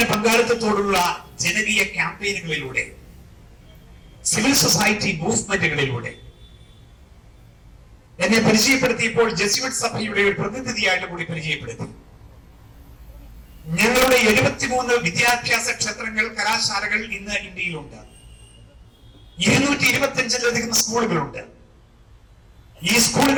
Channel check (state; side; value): identical; both; correlation 1.00